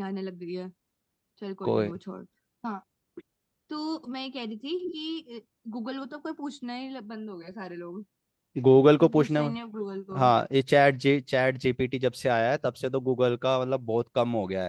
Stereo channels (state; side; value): identical; both; correlation 1.00